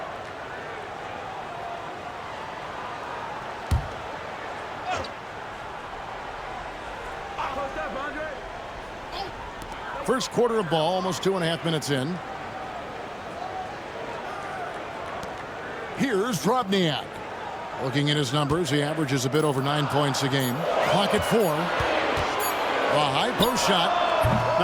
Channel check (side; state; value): both; identical; correlation 1.00